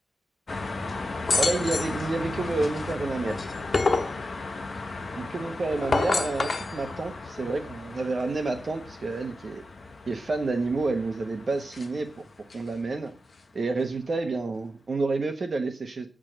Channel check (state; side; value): normal; both; correlation 0.90